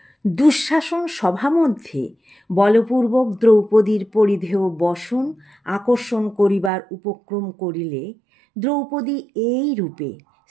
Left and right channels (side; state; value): left; drops out; at 6.7 s